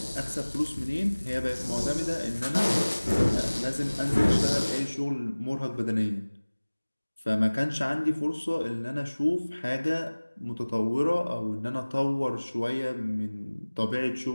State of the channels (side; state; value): both; inverted; correlation -1.00